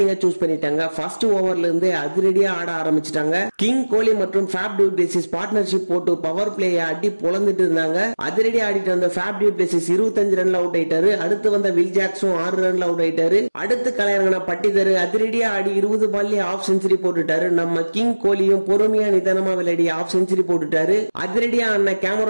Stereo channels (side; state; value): both; inverted; correlation -1.00